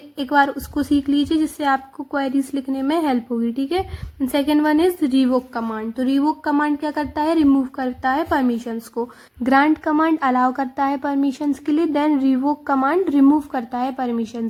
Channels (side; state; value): both; identical; correlation 1.00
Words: बार उसको सीख लीजिए जिससे आपको क्वेरीज लिखने में हेल्प होगी. ठीक है, second one is revoke command. तो रिवोक कमांड क्या करता है, रिमूव करता है परमिशंस को. ग्रांट कमांड अलाउ करता है परमिशंस के लिए, देन रिवोक कमांड रिमूव करता है